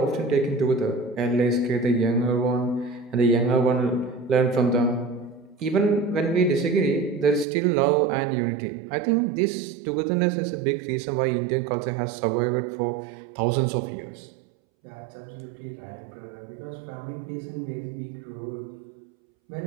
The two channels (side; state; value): left; drops out; at 7.5 s